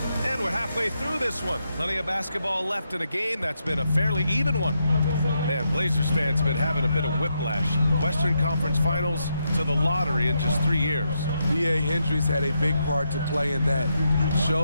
And we're halfway through this one. Plenty of basketball left in a game that's been a fairly even one. Man, Blazers fans have been having a bit of whiplash. Western Conference Finals to the lottery in just 3 years. B.A. Hendricks had a big part to play in that.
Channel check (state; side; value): inverted; both; correlation -0.81